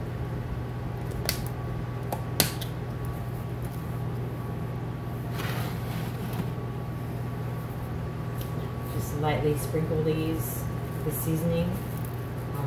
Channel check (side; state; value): both; identical; correlation 1.00